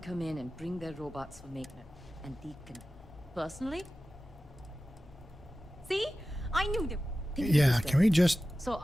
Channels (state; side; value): normal; both; correlation 0.95